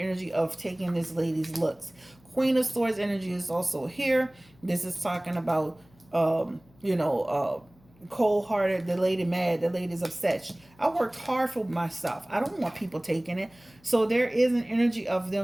of taking this lady's looks. Queen of Swords energy is also here. This is talking about, cold-hearted, the lady mad, the lady's upset. I worked hard for myself. I don't want people taking it. So there is an energy of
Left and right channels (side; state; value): left; noise; hum, 29 dB below the sound